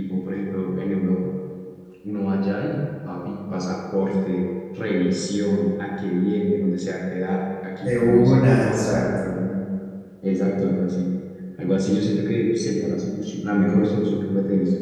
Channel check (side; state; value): both; identical; correlation 1.00